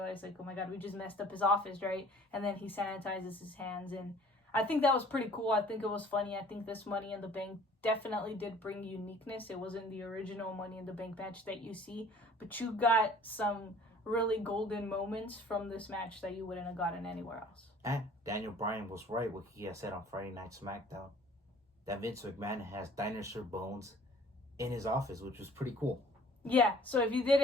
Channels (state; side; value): normal; both; correlation 0.52